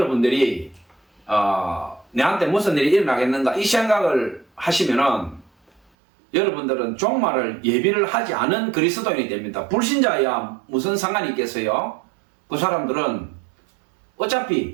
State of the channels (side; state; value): left; drops out; at 5.8 s